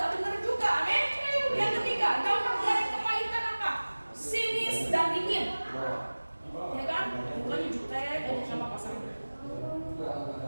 benar juga, amin. Yang ketiga, dampak dari kepahitan apa? Sinis dan dingin. Ya kan? Bukannya jutek aja sama pasangan.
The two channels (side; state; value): both; inverted; correlation -1.00